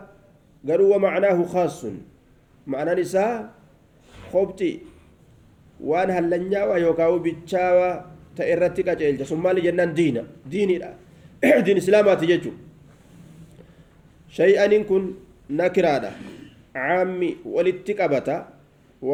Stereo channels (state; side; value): identical; both; correlation 1.00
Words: قالوا ومعناه خاص معنى نساء خبتي وان هلنيا ويوكاو بيتشاوا تأرتي كاجيل ثم لجنان ديني لا دين اسلامات جتو شيئا إن كن نكرادا عامي ولتكبتا